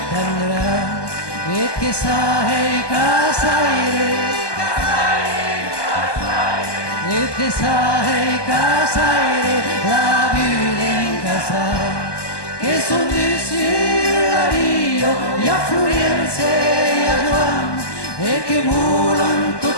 tendrà, e che sai casaire, e che sai casaire, la vita in casa, che son dessus la via, e a Florence e a Giovanni, e che volan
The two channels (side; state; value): right; late; 1.2 ms